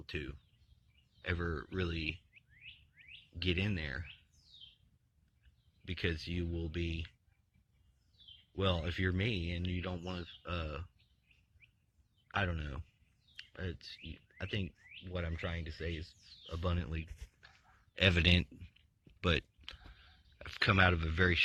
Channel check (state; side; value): identical; both; correlation 1.00